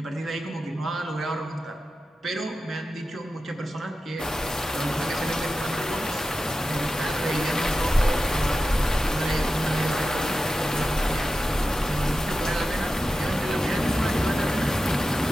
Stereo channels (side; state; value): both; normal; correlation 0.92